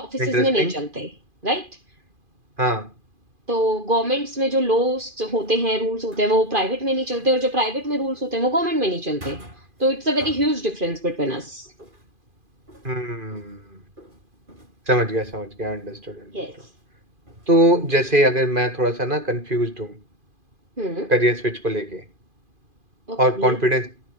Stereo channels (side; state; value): left; late; 2.5 ms